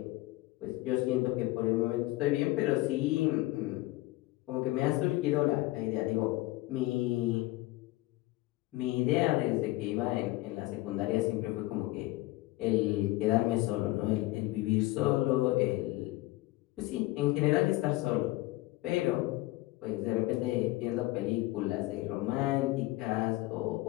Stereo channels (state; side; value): quieter; right; 19.1 dB